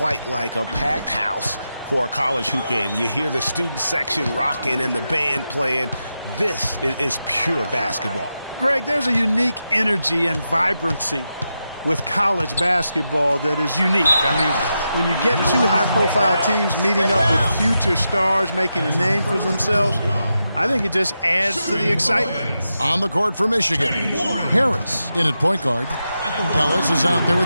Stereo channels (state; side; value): inverted; both; correlation -0.88